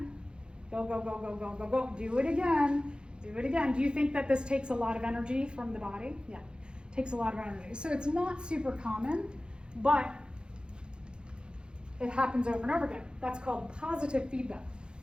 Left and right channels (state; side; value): late; left; 0.051 ms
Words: Go, go, go, go, go, go, go. Do it again. Do it again. Do you think that this takes a lot of energy from the body? Yeah, it takes a lot of energy. So it's not super common, but it happens over and over again. That's called positive feedback.